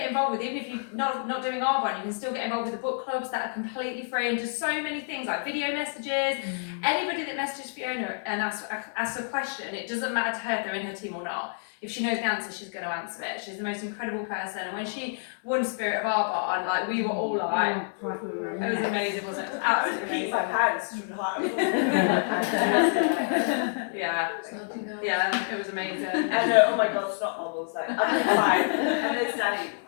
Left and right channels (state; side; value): silent; right; digital silence